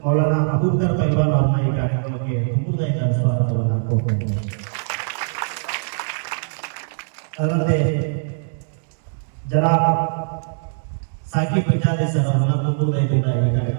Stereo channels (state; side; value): silent; left; digital silence